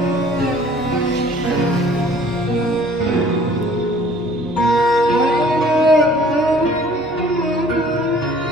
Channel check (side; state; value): both; normal; correlation 0.53